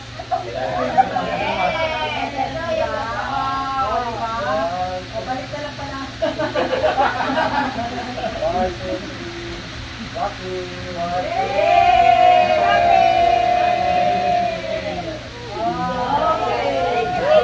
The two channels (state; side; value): identical; both; correlation 1.00